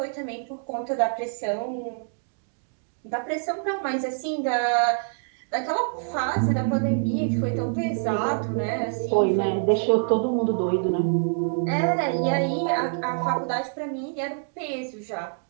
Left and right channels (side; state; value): left; silent; digital silence